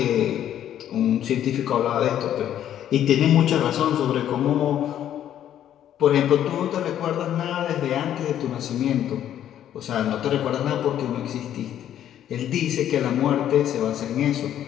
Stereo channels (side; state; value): right; quieter; 10.8 dB